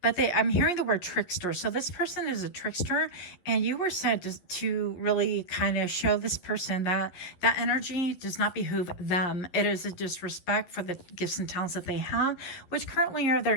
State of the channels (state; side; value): late; right; 12 ms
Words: I'm hearing the word trickster. So this person is a trickster and you were said to really kind of show this person that energy does not behoove them. It is a disrespect for the gifts and talents that they have, which currently are